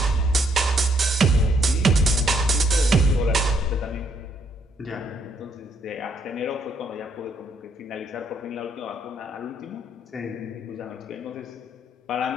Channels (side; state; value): both; normal; correlation 0.71